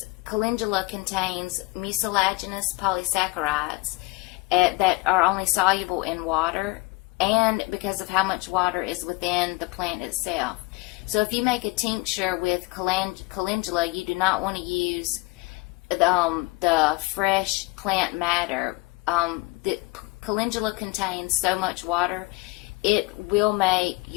calendula contains mucilaginous polysaccharides that are only soluble in water, and because of how much water is within the plant itself. So if you make a tincture with calendula, you do not want to use the fresh plant matter. The calendula contains so much water, it will make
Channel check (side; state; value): right; quieter; 23.8 dB